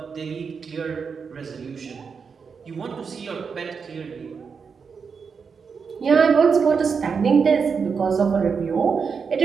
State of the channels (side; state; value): left; quieter; 5.8 dB